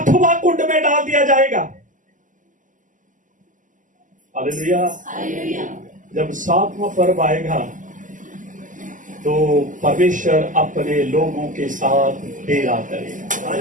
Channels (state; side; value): late; left; 0.38 ms